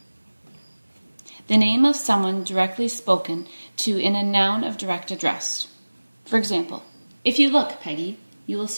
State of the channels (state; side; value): inverted; both; correlation -1.00